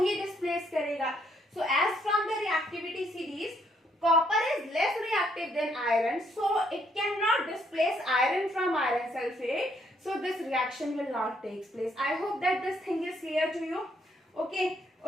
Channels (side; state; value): both; normal; correlation 0.71